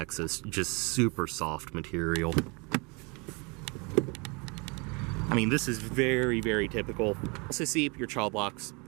just super soft material. I mean, this is very, very typical. Also see your child locks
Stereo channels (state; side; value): quieter; left; 30.3 dB